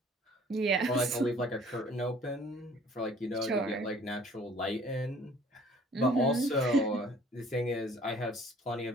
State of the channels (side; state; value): both; normal; correlation 0.54